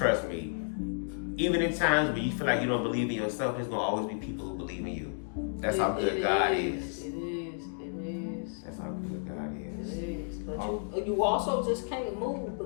me, even in times when you feel like you don't believe in yourself, there's going to always be people who believe in you. That's how good God is. It is. That's how good God is. It is. But you also just can't move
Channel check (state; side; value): silent; right; digital silence